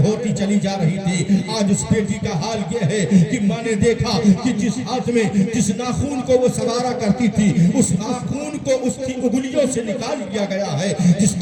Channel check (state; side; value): identical; both; correlation 1.00